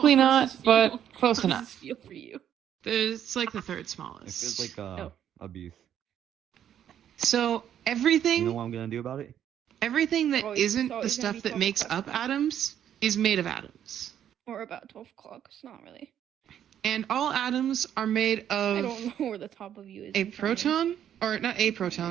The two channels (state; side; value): quieter; left; 10.0 dB